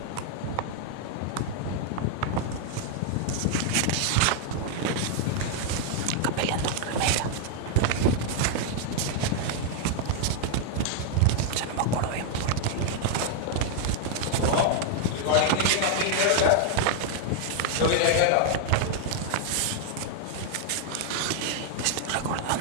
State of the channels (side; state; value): both; different; correlation 0.00